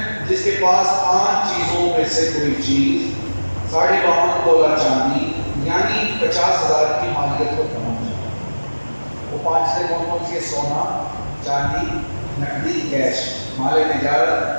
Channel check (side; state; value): both; inverted; correlation -1.00